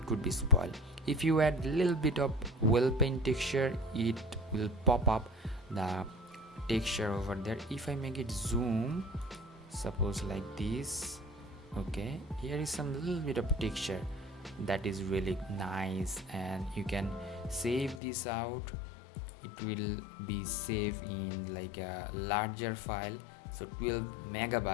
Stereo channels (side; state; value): right; drops out; at 18.0 s